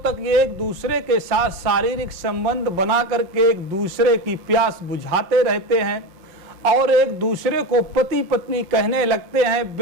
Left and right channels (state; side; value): late; left; 5.6 ms